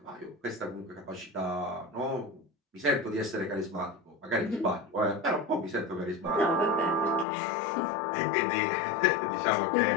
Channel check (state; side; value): drops out; right; at 7.2 s